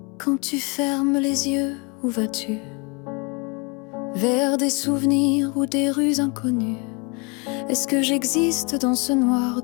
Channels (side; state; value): right; quieter; 30.9 dB